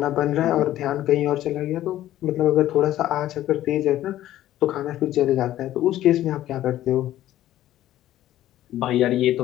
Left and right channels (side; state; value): right; quieter; 13.5 dB